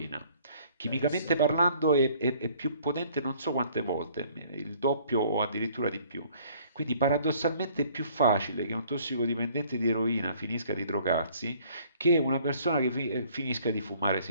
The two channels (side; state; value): both; inverted; correlation -0.58